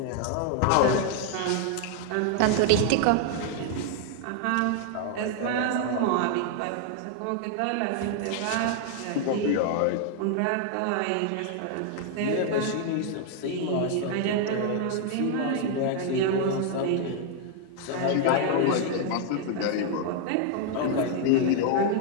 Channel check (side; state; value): both; different; correlation 0.00